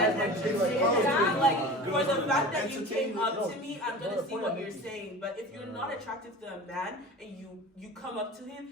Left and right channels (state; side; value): normal; both; correlation 0.35